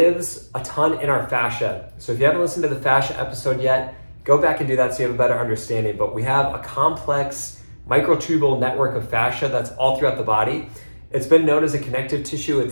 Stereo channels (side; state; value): both; inverted; correlation -1.00